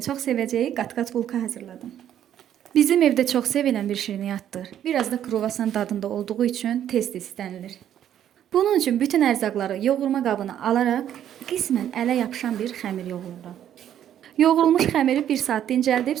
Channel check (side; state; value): left; quieter; 10.5 dB